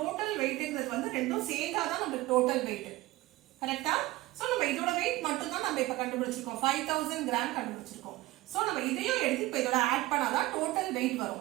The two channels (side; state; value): left; quieter; 18.5 dB